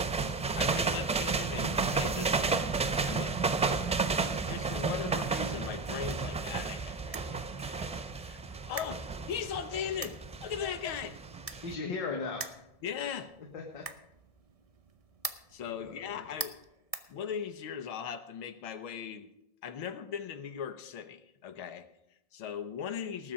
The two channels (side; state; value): right; late; 1.7 ms